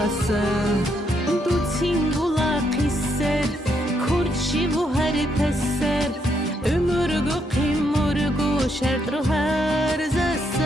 du singula qisser kurçi bu her pesser ömürgü qimurgu şertru her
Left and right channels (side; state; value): both; normal; correlation 0.76